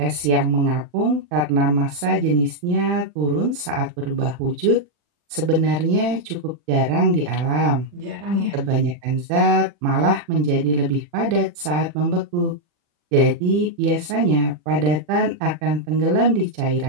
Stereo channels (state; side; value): late; left; 40 ms